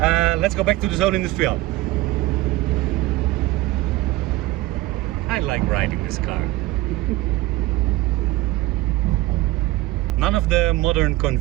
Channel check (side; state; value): left; quieter; 17.8 dB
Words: Let's go back to the Zone Industrial. I like riding this car. None of the modern